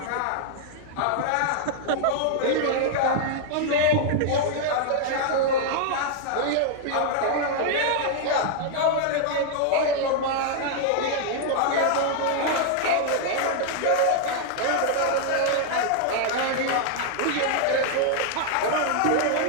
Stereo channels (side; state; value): both; different; correlation -0.01